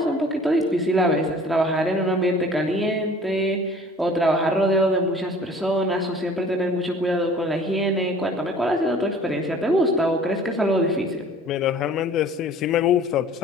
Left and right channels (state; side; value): normal; both; correlation 0.49